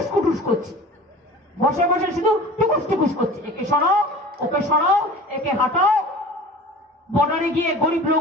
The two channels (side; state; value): both; normal; correlation 0.41